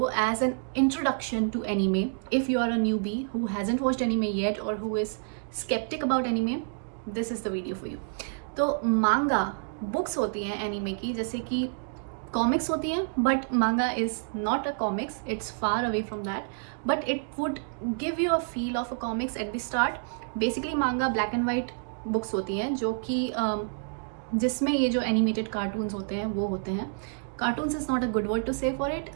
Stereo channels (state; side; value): silent; left; digital silence